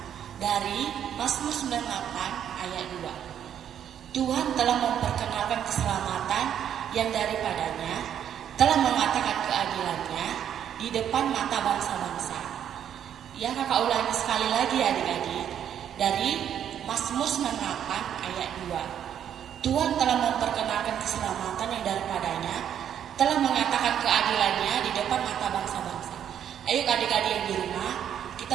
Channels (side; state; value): left; quieter; 9.5 dB